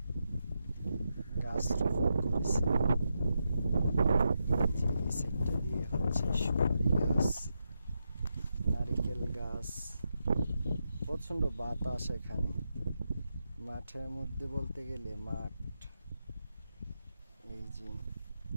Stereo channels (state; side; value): inverted; both; correlation -0.85